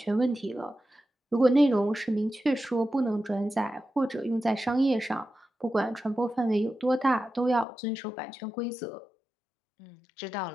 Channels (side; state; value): right; drops out; at 7.7 s